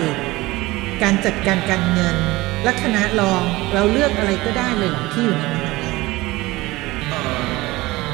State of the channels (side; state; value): left; quieter; 20.1 dB